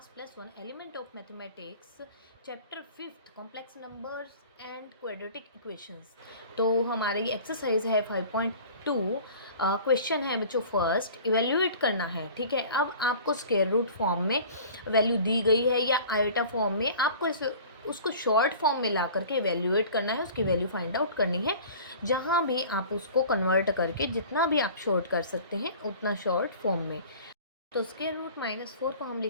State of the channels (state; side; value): inverted; both; correlation -0.43